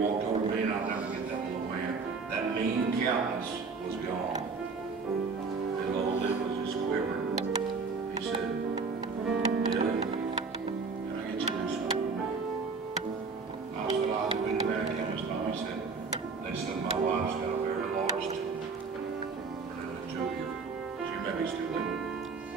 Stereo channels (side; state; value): left; quieter; 4.6 dB